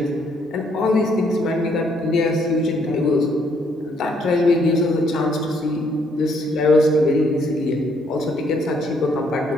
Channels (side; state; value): both; normal; correlation 0.69